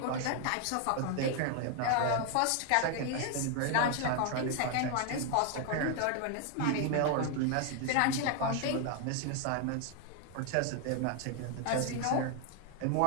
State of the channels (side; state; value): both; different; correlation 0.00